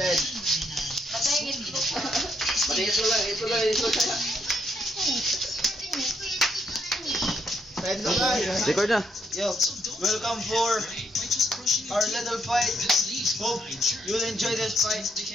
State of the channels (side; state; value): both; normal; correlation 0.74